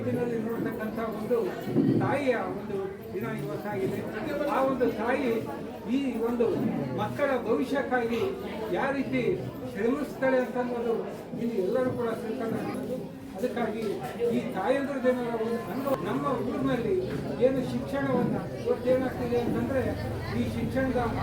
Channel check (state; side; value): identical; both; correlation 1.00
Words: ನೋಡ್ತಕ್ಕಂಥ ಒಂದು ತಾಯಿಯ ಒಂದು ದಿನ ಇವತ್ತಾಗಿದೆ. ಆ ಒಂದು ತಾಯಿ ಈ ಒಂದು ಮಕ್ಕಳ ಭವಿಷ್ಯಕ್ಕಾಗಿ ಯಾವ ರೀತಿ ಶ್ರಮಿಸ್ತಾಳೆ ಅಂತ ಅನ್ನೋದು ಇಲ್ಲಿ ಎಲ್ಲರೂ ಕೂಡ ತಿಳ್ಕೊಳ್ಳೋದು. ಅದಕ್ಕಾಗಿ ಈ ತಾಯಂದ್ರ ಜನರ ಒಂದು ಅನುಭವ ನಮ್ಮ ಊರಿನಲ್ಲಿ ಏನು ಶಿಕ್ಷಣವನ್ನು ಇವತ್ತೇನಾಗ್ತಿದೆ ಅಂತಂದರೆ ಈ ಶಿಕ್ಷಣದ